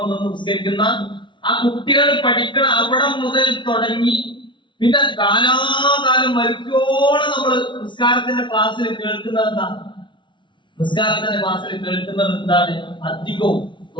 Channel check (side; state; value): right; late; 0.24 ms